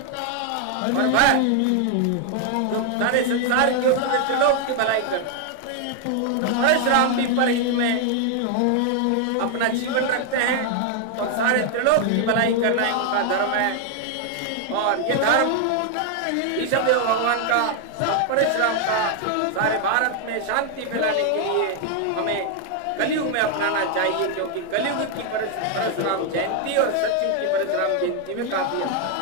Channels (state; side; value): different; both; correlation 0.00